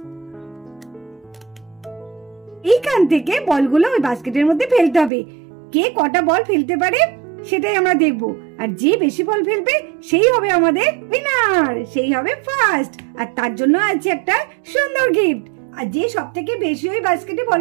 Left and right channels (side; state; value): left; drops out; at 5.1 s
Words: এইখান থেকে বলগুলো ওই বাস্কেটের মধ্যে ফেলতে হবে। কে কটা বল ফেলতে পারে সেটাই আমরা দেখব, আর যে বেশি বল ফেলবে সেই হবে আমাদের উইনার, সেই হবে ফার্স্ট। আর তার জন্য আছে একটা সুন্দর গিফট। আর যে সব থেকে বেশি ওই বাস্কেটে বল